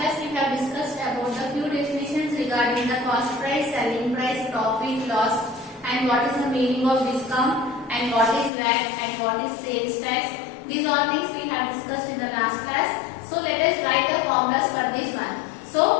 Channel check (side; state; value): right; drops out; at 8.5 s